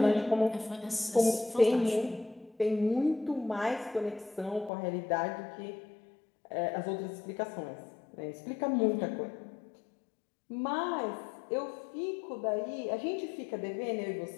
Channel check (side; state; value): right; drops out; at 4.7 s